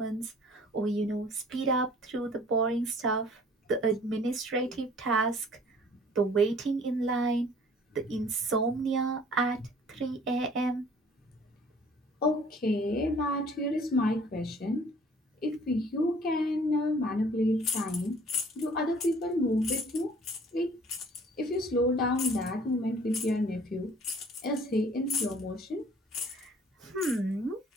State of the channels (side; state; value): both; normal; correlation 0.54